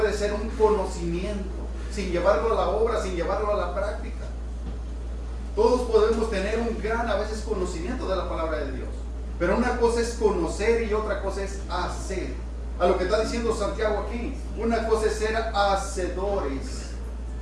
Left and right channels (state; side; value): identical; both; correlation 1.00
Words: ser un conocimiento sin llevarlo a la obra, sin llevarlo a la práctica. Todos podemos tener un gran a veces conocimiento de la palabra de Dios, pero una cosa es conocer y otra cosa es hacer. A lo que está diciendo Santiago aquí, una cosa es ser hacedores